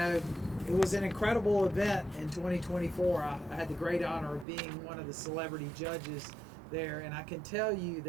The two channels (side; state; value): left; drops out; at 4.5 s